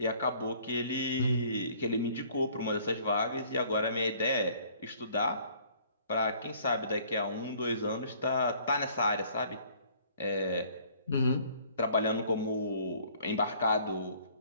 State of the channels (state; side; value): inverted; both; correlation -0.57